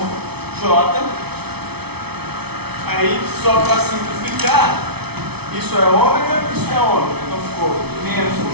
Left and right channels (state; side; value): late; left; 0.98 ms